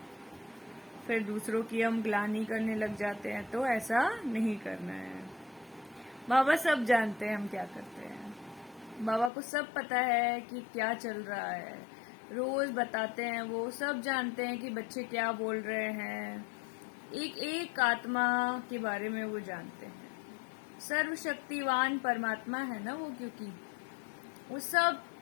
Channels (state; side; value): drops out; right; at 9.3 s